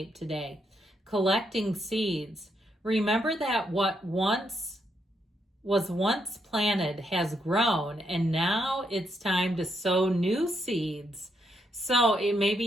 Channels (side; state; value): both; normal; correlation 0.78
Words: today. Collecting seeds. Remember that what was once planted has grown, and now it's time to sow new seeds. So it may